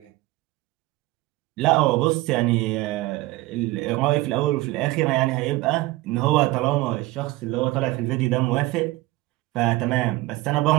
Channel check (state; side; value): quieter; left; 18.9 dB